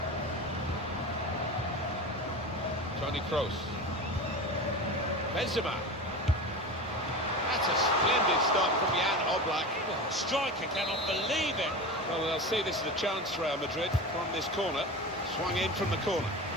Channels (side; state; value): both; normal; correlation 0.28